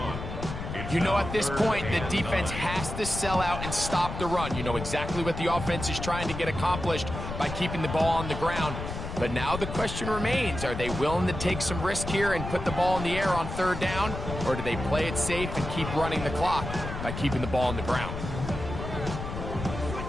You know, at this point, the defense has to sell out and stop the run. You know exactly what the offense is trying to get accomplished by keeping the ball on the ground. But now the question remains, are they willing to take some risk here and put the ball in the air on 3rd down? Or do they play it safe and keep running the clock by keeping the ball on the ground?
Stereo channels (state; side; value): noise; left; rumble, 7 dB below the sound